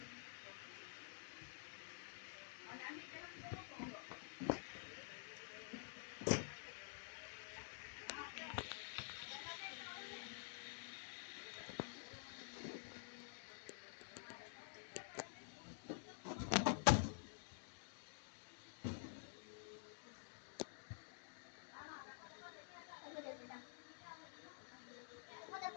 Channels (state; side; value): silent; right; digital silence